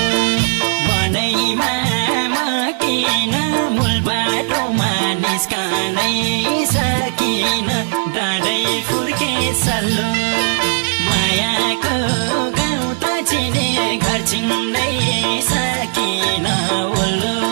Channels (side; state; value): left; silent; digital silence